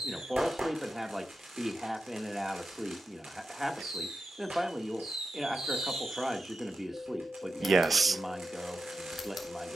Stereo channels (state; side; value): normal; both; correlation 0.90